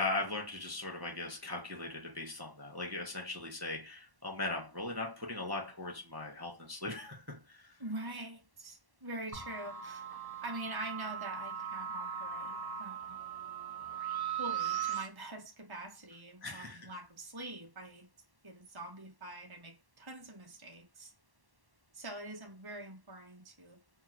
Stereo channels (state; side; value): late; left; 1.1 ms